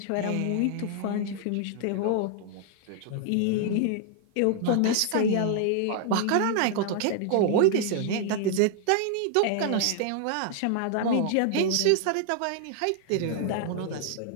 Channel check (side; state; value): both; different; correlation 0.00